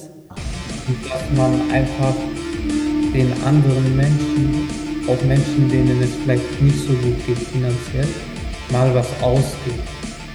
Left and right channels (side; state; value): both; identical; correlation 1.00